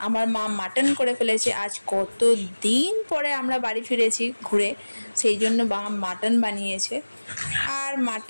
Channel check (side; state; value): both; inverted; correlation -1.00